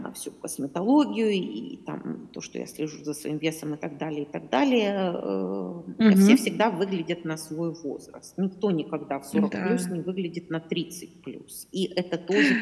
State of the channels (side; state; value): both; identical; correlation 1.00